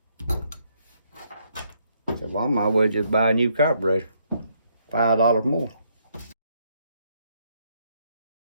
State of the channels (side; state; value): both; inverted; correlation -0.72